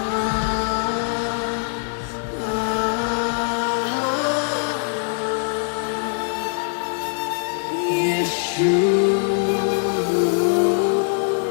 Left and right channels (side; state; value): right; silent; digital silence